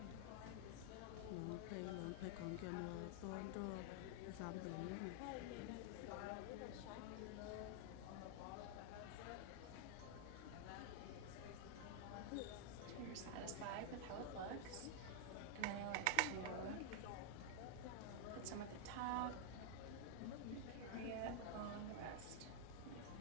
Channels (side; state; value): both; different; correlation 0.00